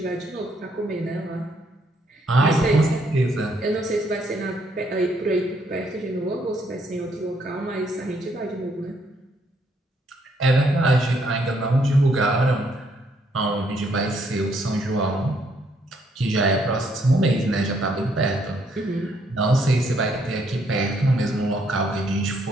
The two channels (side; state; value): both; normal; correlation 0.71